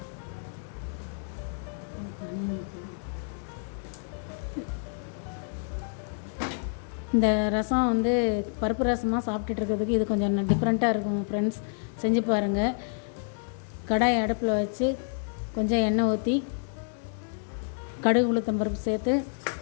இந்த ரசம் பருப்பு ரசமாக சாப்பிட்டுட்டு இருக்கிறதுக்கு இது கொஞ்சம் டிஃப்ரெண்ட்டாக இருக்கும் ஃப்ரெண்ட்ஸ், செஞ்சு பாருங்கள். கடாய் அடுப்பில் வச்சு கொஞ்சம் எண்ணெய் ஊற்றி கடுகு உளுத்தம்பருப்பு சேர்த்து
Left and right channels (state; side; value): silent; right; digital silence